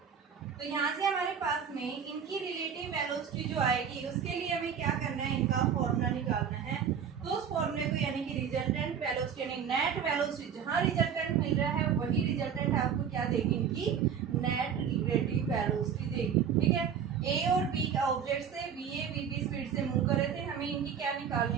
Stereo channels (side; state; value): left; quieter; 7.6 dB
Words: तो यहाँ से हमारे पास में इनकी रिलेटिव वेलोसिटी जो आएगी उसके लिए हमें क्या करना है? इनका फॉर्मूला निकालना है। तो उस फॉर्मूले को यानी कि रिजल्टेंट वेलोसिटी यानी नेट वेलोसिटी, जहाँ रिजल्टेंट मिल रहा है वही रिजल्टेंट आपको क्या देगी? इनकी नेट रिलेटिव वेलोसिटी देगी। ठीक है, ए और बी का ऑब्जेक्ट से B A B B speed से मूव कर रहे थे, हमें इनकी क्या